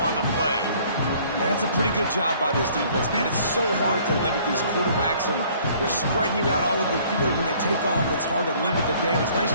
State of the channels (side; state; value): both; inverted; correlation -0.57